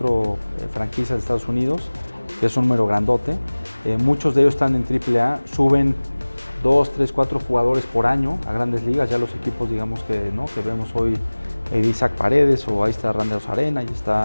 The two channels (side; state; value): both; inverted; correlation -1.00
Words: franquicias de Estados Unidos, que es un número grandote. Muchos de ellos están en AAA, suben 2, 3, 4 jugadores por año a grandes ligas. Ya los equipos, digamos que vemos hoy, Isaac Paredes, o ahí está Randy Arozarena, ahí